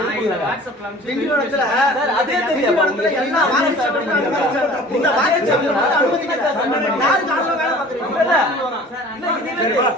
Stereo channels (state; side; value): normal; both; correlation 0.46